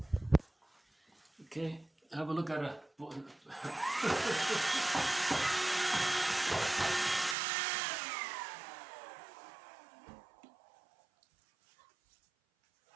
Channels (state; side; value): drops out; left; at 7.4 s